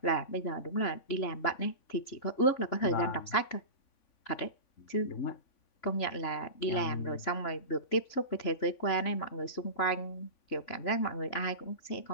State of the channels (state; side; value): late; right; 3.5 ms